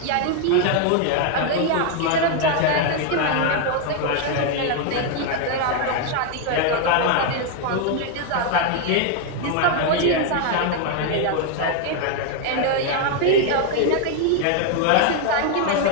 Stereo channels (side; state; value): both; different; correlation 0.00